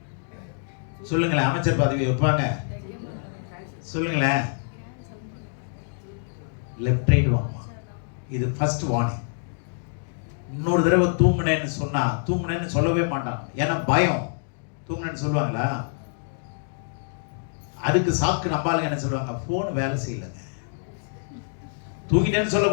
சொல்லுங்களேன். அமைச்சர் பதவி வைப்பாங்க? சொல்லுங்களேன். லெஃப்ட் ரைட் வாங்குமா. இது ஃபர்ஸ்ட் வார்னிங். இன்னொரு தடவை தூங்குனேன்னு சொன்னா, தூங்குனேன்னு சொல்லவே மாட்டான். ஏன்னா பயம். தூங்குனேன்னு சொல்லுவாங்களா? அதுக்கு சாக்கு நம்பாளுங்க என்ன சொல்லுவாங்க, போன் வேலை செய்யலைங்க. தூங்கிட்டேன்னு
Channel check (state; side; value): silent; right; digital silence